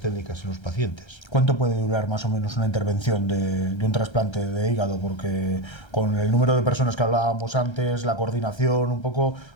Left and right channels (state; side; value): late; right; 1.3 ms